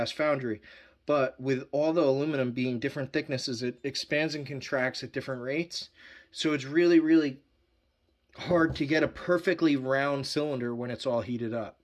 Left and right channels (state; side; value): identical; both; correlation 1.00